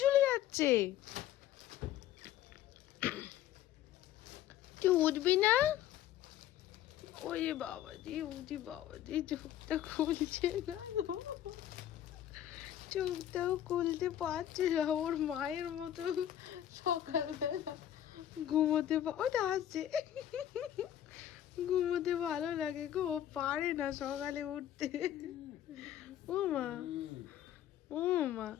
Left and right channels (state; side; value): quieter; right; 11.7 dB